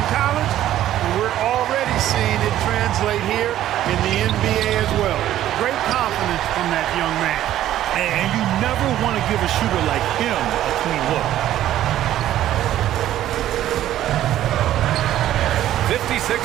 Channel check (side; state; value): left; quieter; 12.7 dB